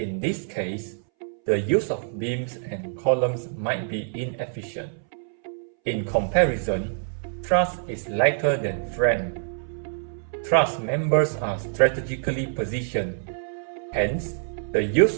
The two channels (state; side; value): silent; left; 61 dB below the other